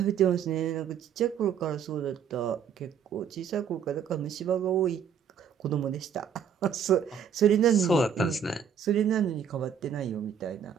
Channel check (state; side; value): quieter; left; 7.7 dB